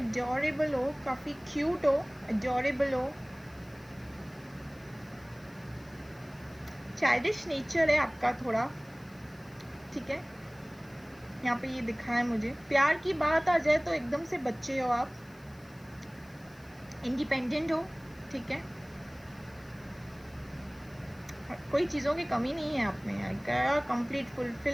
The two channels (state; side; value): noise; left; hiss, 28 dB below the sound